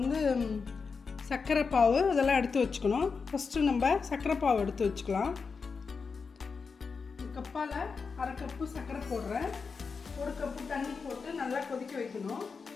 சர்க்கரை பாவு இதெல்லாம் எடுத்து வச்சுக்கணும். ஃபஸ்ட்டு நம்ம சர்க்கரை பாவு எடுத்து வச்சுக்கலாம். கப்பால் அரை கப்பு சர்க்கரை போடுறேன். ஒரு கப்பு தண்ணி போட்டு நல்லா கொதிக்க வைக்கணும்.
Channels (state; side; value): quieter; right; 5.1 dB